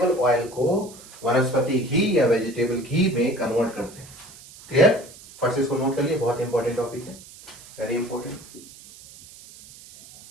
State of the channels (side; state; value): right; noise; hiss, 20 dB below the sound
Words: ऑयल को वनस्पति घी या वेजिटेबल घी में कन्वर्ट करते हैं। क्लियर, फर्स्ट इसको नोट कर लिए, बहुत इंपॉर्टेंट टॉपिक है, वेरी इंपॉर्टेंट।